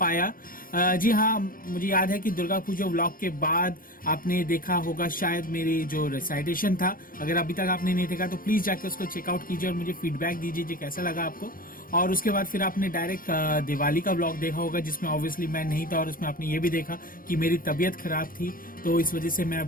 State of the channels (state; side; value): late; right; 0.41 ms